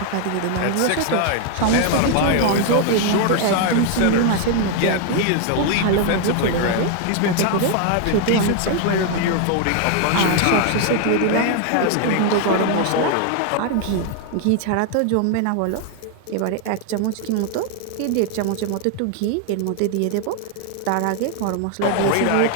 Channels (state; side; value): different; both; correlation 0.00